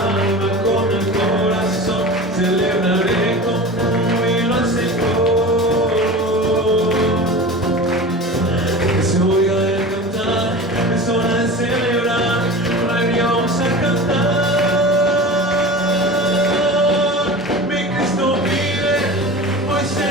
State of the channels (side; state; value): both; normal; correlation 0.33